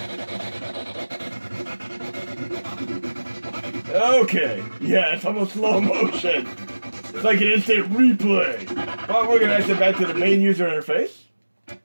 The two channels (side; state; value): both; inverted; correlation -1.00